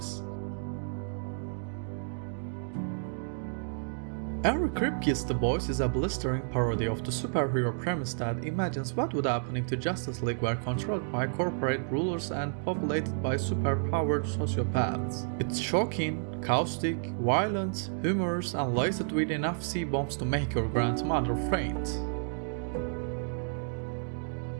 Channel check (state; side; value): silent; left; 57 dB below the other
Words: Every Kripke's The Boys is a blistering parody of the superhero premise that imagines what would happen if the Justice League were controlled by corporate rulers and populated by superpowered sociopaths. It's shocking, caustic, violent, humorous, and laced with enough C-bombs to make your grandmother faint.